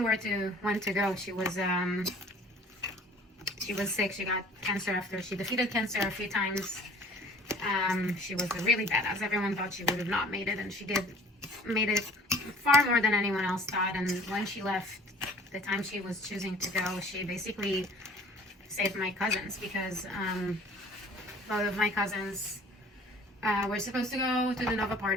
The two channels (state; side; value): normal; both; correlation 0.51